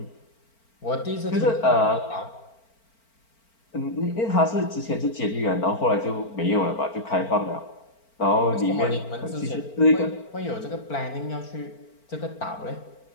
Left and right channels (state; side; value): late; right; 4.4 ms